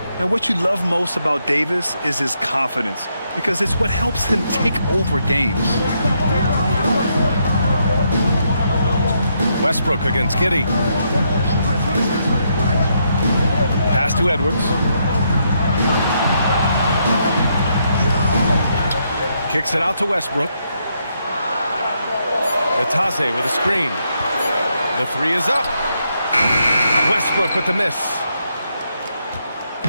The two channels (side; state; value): both; inverted; correlation -0.77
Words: And what you love most about Davis is his confidence, because it's what helps him take over games. Westbrook against Giddey. Pass to Edwards. Kicks it out to Westbrook. Batase with a screen. The 3 is up. Westbrook with the miss.